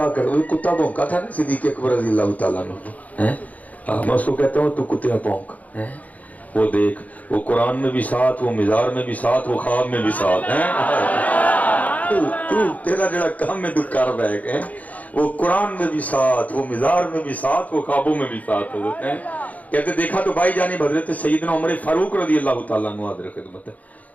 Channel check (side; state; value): right; late; 0.074 ms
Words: کر وہ کتا بھونکا تھا نا صدیق اکبر رضی اللہ تعالیٰ نے میں اس کو کہتا ہوں تو کتیا بھونک وہ دیکھ وہ قرآن میں بھی ساتھ وہ مزار میں بھی ساتھ وہ خواب میں بھی ساتھ تو تیرا جڑا کام میں تو کر بیگ ہے وہ قرآن میں بھی ساتھ وہ مزار میں بھی ساتھ وہ خوابوں میں بھی ساتھ حضرت ہیں کہتے دیکھا تو بھائی جانب حضرت سیدنا عمر فاروق رضی اللہ تعالیٰ عنہ حاضر خدمت ہے